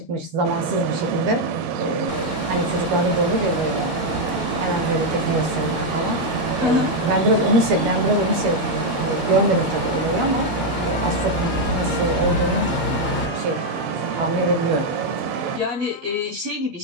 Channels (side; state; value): left; late; 13 ms